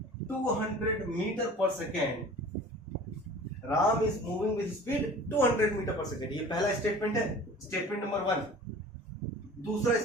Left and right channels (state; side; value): normal; both; correlation 0.43